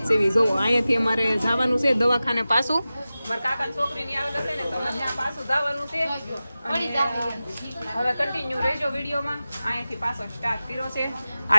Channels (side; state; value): both; inverted; correlation -0.95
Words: જ સેવી. જોવો અહીંયાથી અમારે જવાનું છે દવાખાને પાછું. મારા કાકાની છોકરીની આવેલ હશે ને તો ત્યાં પાછું જવાનું છે. હવે કન્ટિન્યુ રહેજો વિડીયોમાં. અહીંયાથી પાછો સ્ટાર્ટ કર્યો છે. આ